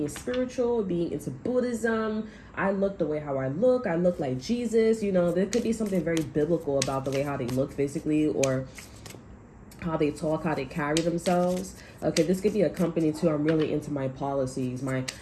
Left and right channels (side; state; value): both; identical; correlation 1.00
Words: spiritual, being into Buddhism. I look the way how I look. I look like Jesus. There could be something very biblical about the way how they look physically or how they talk, how they carry themselves. Okay, this could be a company too. I'm really into my policies. My